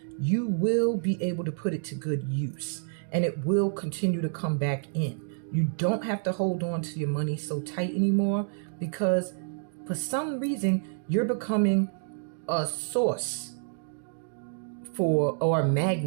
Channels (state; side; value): silent; left; digital silence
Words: you will be able to put it to good use and it will continue to come back in. You don't have to hold on to your money so tight anymore, because for some reason you're becoming a source for, or a